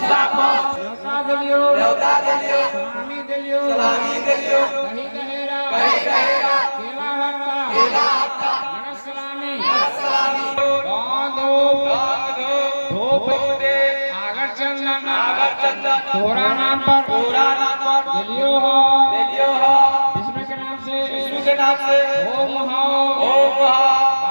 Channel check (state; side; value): inverted; both; correlation -1.00